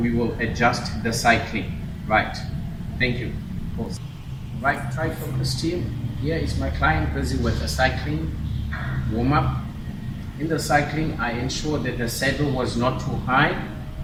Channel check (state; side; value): identical; both; correlation 1.00